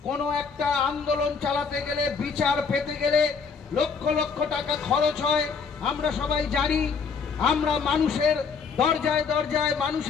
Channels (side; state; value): right; quieter; 5.6 dB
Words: কোনো একটা আন্দোলন চালাতে গেলে, বিচার পেতে গেলে লক্ষ লক্ষ টাকা খরচ হয়, আমরা সবাই জানি। আমরা মানুষের দরজায় দরজায়,